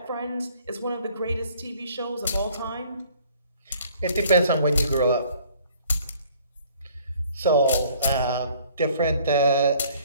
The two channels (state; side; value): inverted; both; correlation -0.57